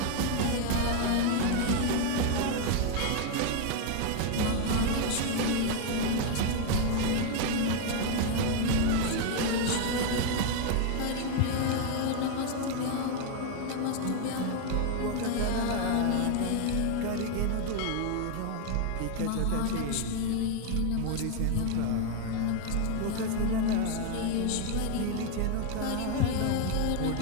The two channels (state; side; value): different; both; correlation 0.01